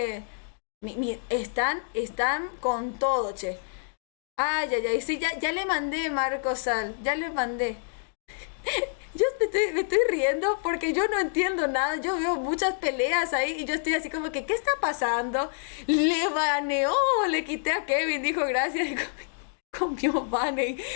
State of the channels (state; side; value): silent; right; digital silence